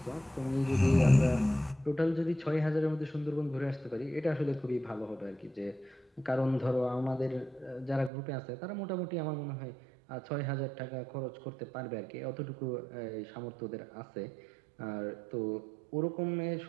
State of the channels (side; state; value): left; drops out; at 8.1 s